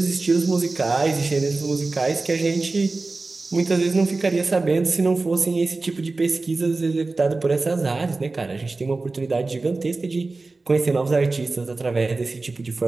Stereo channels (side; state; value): left; quieter; 3.5 dB